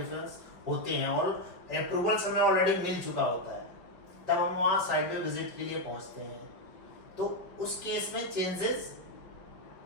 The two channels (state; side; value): late; right; 5.2 ms